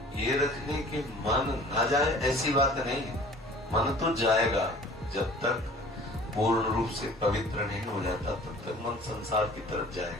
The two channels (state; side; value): normal; both; correlation 0.47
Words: ये रखनी कि मन न जाए, ऐसी बात नहीं है। मन तो जाएगा, जब तक पूर्ण रूप से पवित्र नहीं हो जाता तब तक मन संसार की तरफ